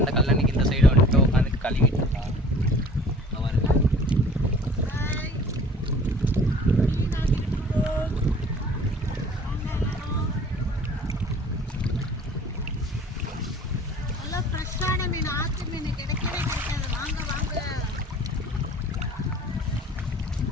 இந்த கல்லணைக்கு இந்த சைடு வந்துட்டு உட்காந்து கழுவிட்டு இருக்கோம்.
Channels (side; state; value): both; normal; correlation 0.48